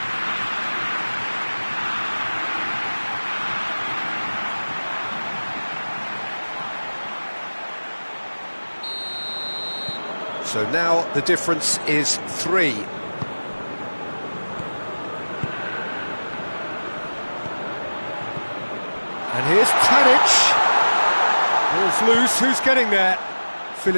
So now the difference is 3. And here's Tadic. Ball's loose, who's getting there?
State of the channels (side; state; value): both; inverted; correlation -1.00